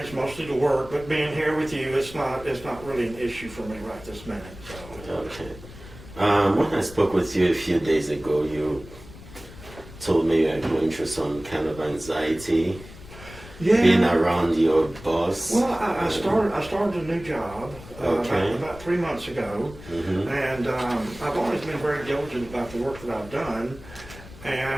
mostly to work. But being here with you, it's not really an issue for me right this minute. So. Okay. When I spoke with you a few days ago, you told me you were going through some kind of anxiety Yeah. being around your boss. Well, I started a new job Okay. about 3 months ago, Mm-hmm. and I've always been very diligent about the work that I've done,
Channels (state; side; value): noise; left; rumble, 17 dB below the sound